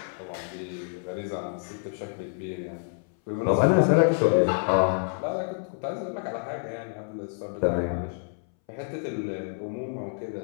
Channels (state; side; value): silent; right; 59 dB below the other